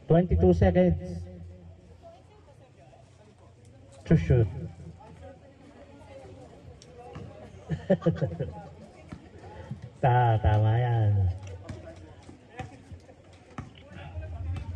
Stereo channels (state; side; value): identical; both; correlation 1.00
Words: Twenty-two seconds to shoot. Tama yan.